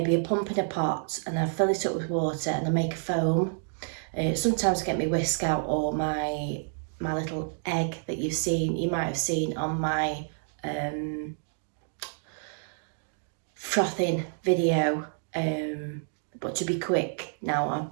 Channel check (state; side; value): silent; left; digital silence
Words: a pump in a pot, and I fill it up with water and I make a foam. Sometimes I get my whisk out or my little egg that you might have seen on my frothing video, but to be quick now I'll